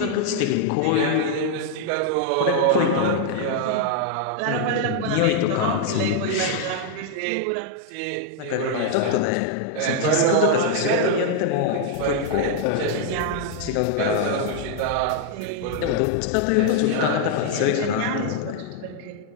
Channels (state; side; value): different; both; correlation 0.00